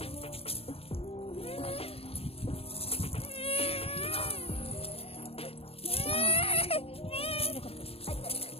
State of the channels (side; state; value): right; late; 0.28 ms